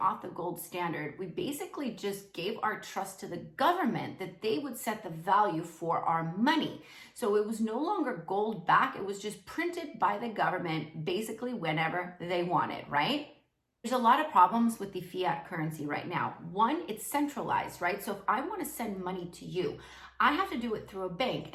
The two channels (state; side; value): identical; both; correlation 1.00